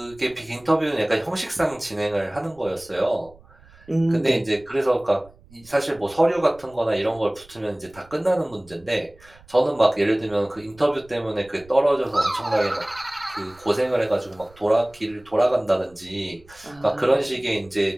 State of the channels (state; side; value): noise; right; rumble, 26 dB below the sound